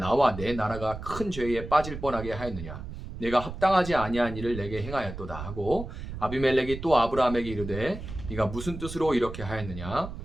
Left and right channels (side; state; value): right; noise; rumble, 10 dB below the sound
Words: 내 나라가 큰 죄에 빠질 뻔하게 하였느냐. 내가 합당하지 아니한 일을 내게 행하였도다 하고 아비멜렉이 또 아브라함에게 이르되 네가 무슨 뜻으로 이렇게 하였느냐.